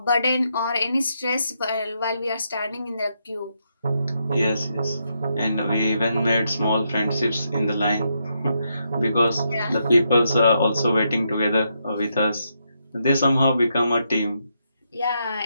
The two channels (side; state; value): both; inverted; correlation -0.80